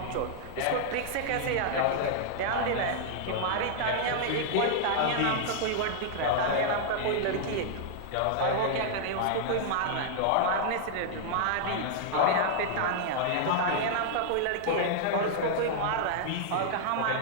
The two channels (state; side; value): different; both; correlation -0.01